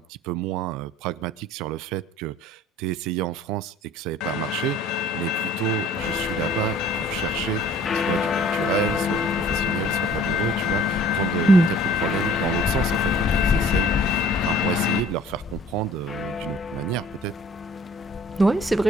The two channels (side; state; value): both; normal; correlation 0.52